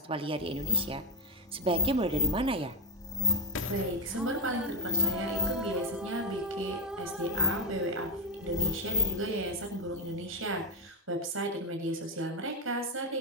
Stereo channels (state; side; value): normal; both; correlation 0.05